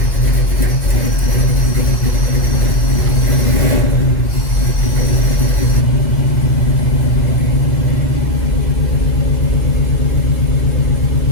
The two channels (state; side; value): late; right; 2.6 ms